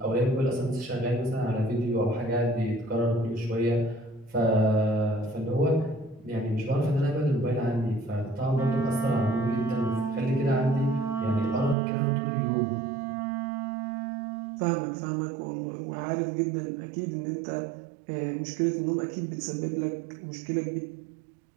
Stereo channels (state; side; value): drops out; left; at 11.8 s